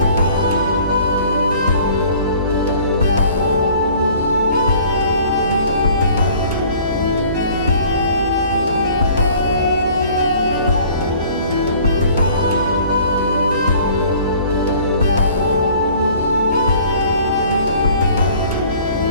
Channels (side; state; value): both; inverted; correlation -0.51